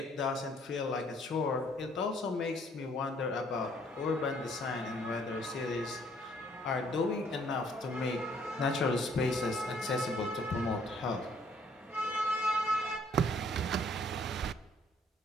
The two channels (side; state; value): both; normal; correlation 0.63